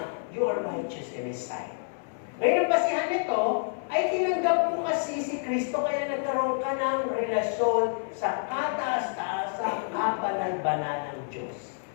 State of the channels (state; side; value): silent; right; 59 dB below the other